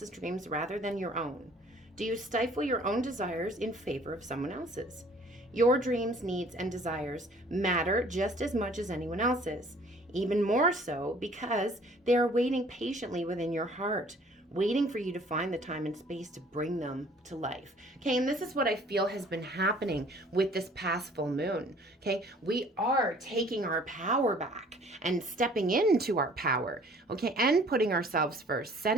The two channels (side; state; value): both; normal; correlation 0.54